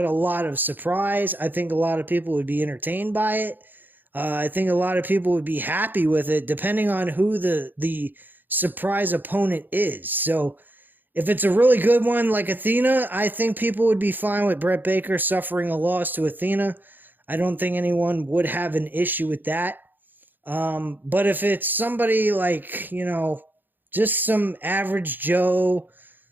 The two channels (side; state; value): left; late; 0.090 ms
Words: a lot of surprise. I think a lot of people would be entertained by it. I think a lot of people would be happy with it, depending on who the surprise opponent is. So if it's a really good one like Athena, I think people would be fine with Britt Baker suffering a loss to Athena. I don't think anyone would have an issue with that. But if it's somebody like, just some average Joe,